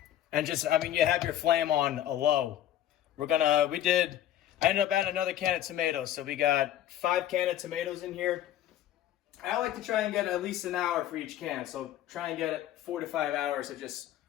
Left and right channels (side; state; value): right; quieter; 11.9 dB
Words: just, I mean, you have your flame on a low. I ended up adding another can of tomatoes, so we got 5 cans of tomatoes in here. I like to try and get at least an hour for each can, so try and get it 4 to 5 hours of just